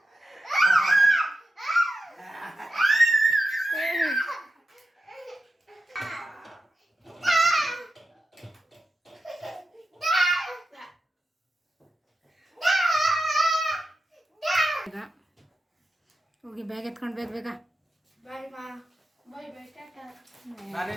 ಈಗ ಹೋಗಿ ಬ್ಯಾಗ್ ಎತ್ಕೊಂಡು ಬೇಗ ಬೇಗ ಬಾಯ್ ಮಾ. ಬಾಯ್ ಬಾಯ್ ಟಾಟಾ.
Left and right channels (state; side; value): normal; both; correlation 0.90